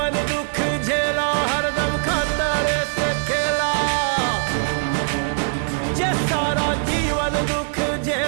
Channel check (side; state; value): left; silent; digital silence